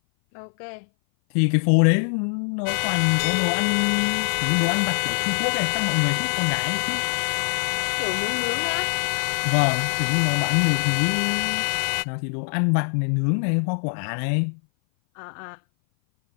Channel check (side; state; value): right; silent; 58 dB below the other